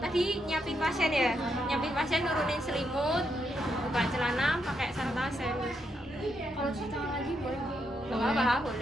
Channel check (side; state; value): both; normal; correlation 0.80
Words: nyiapin pasien nurunin selimut, buka celana, pakai sarung tangan steril. Kalau cuci tangan lagi boleh? Nggak apa-apa,